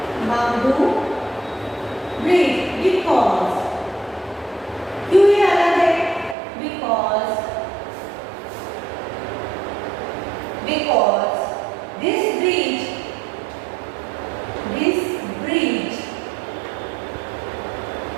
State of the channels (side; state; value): left; drops out; at 6.4 s